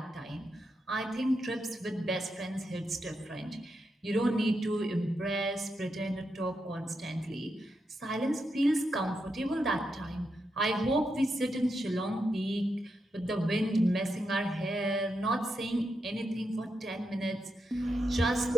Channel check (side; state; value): both; normal; correlation 0.85